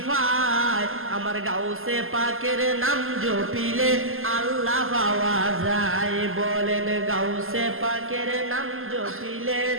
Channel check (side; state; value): left; late; 0.61 ms